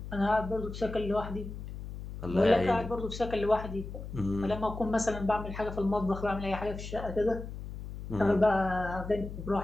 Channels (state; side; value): noise; left; hum, 9 dB below the sound